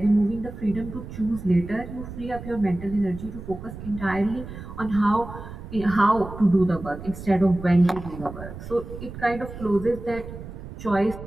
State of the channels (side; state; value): right; noise; rumble, 12 dB below the sound